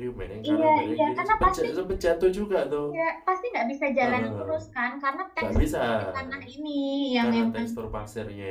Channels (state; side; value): identical; both; correlation 1.00